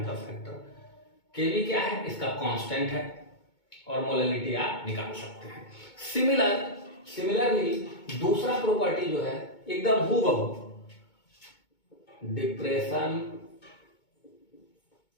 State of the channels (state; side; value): late; right; 2.2 ms